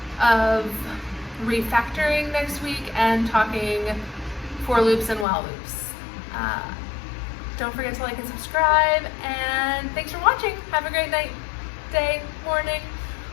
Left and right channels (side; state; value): right; drops out; at 5.2 s